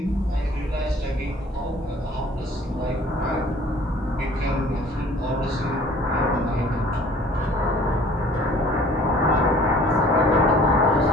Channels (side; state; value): both; normal; correlation 0.52